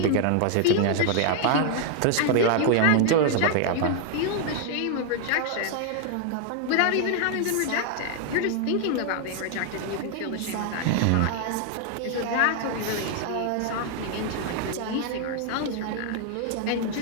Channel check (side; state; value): both; different; correlation 0.00